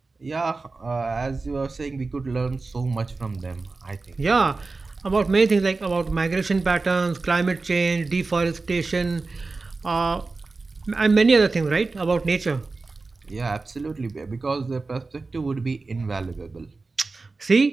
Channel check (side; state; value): left; quieter; 3.8 dB